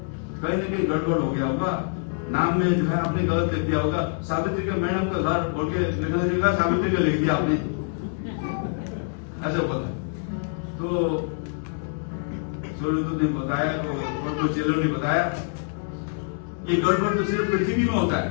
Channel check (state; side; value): silent; right; 61 dB below the other